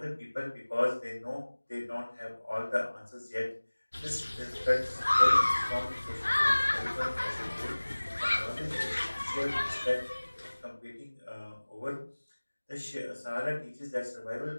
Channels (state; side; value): inverted; both; correlation -1.00